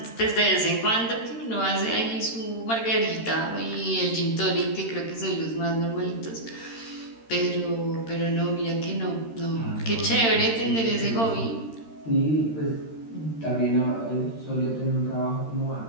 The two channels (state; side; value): late; right; 13 ms